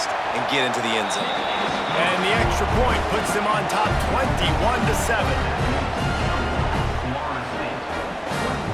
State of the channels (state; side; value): identical; both; correlation 1.00